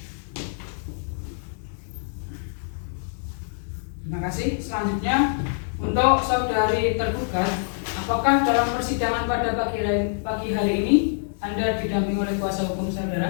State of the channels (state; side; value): silent; right; 62 dB below the other